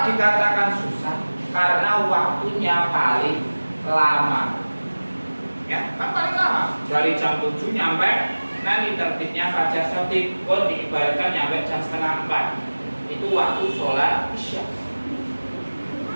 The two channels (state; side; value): inverted; both; correlation -1.00